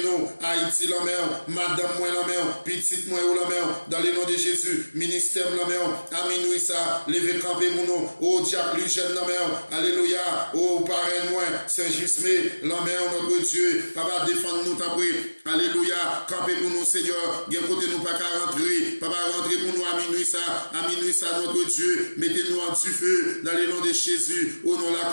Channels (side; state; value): both; inverted; correlation -1.00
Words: nous, Haïti, la mer, madame, moi, la mer, petite, moi, la mer, dans le nom de Jésus, ministère, la mer, à minuit, ça, levé camper pour nous, au diable, lui, jeune, la mer, alléluia, oh parrain moi, Saint-Jusmé, l'envers notre Dieu, papa défends-nous ta prière, alléluia, campez pour nous Seigneur, bien côté nous pas qu'à rentrer, papa rentrez pour nous à minuit ça notre Dieu, mettez-nous en du feu, dans le nom de Jésus, au nom de la